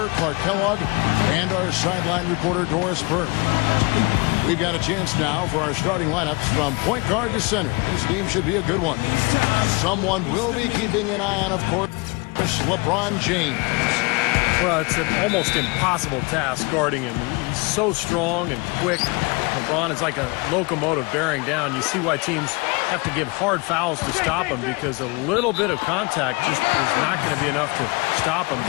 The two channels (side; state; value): right; quieter; 27.8 dB